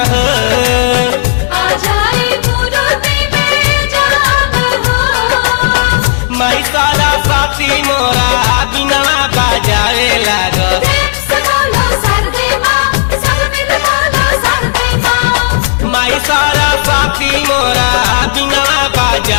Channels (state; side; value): silent; right; digital silence